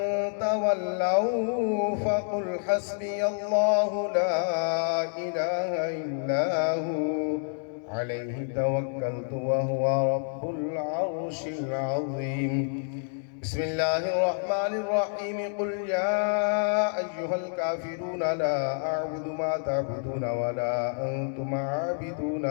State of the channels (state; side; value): silent; right; digital silence